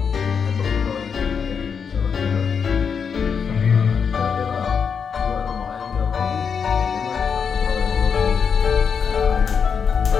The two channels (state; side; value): quieter; right; 6.5 dB